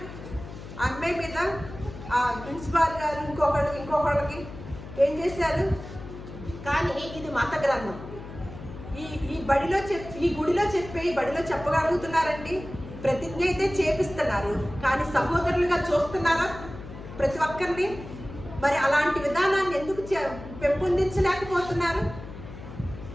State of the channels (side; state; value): left; noise; hum, 12 dB below the sound